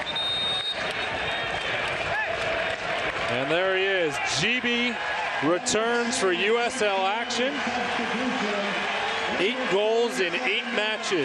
And there he is. GB returns for USL action. 8 goals in 8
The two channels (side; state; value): both; identical; correlation 1.00